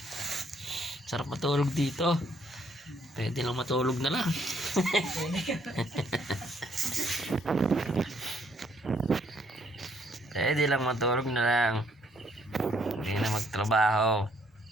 Sarap matulog dito. Pwede lang matulog na lang. Pwede lang matulog na lang. Hindi na magtrabaho.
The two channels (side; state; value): both; normal; correlation 0.67